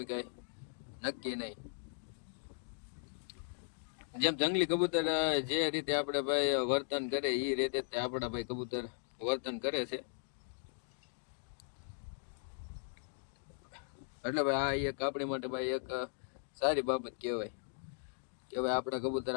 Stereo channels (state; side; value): silent; right; digital silence